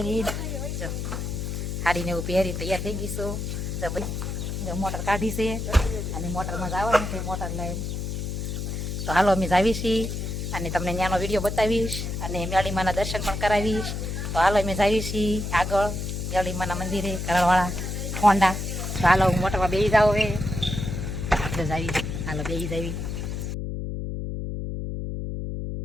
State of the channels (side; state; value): left; noise; hum, 4 dB below the sound